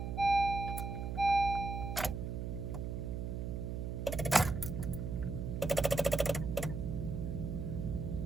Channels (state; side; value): noise; right; hum, 3 dB below the sound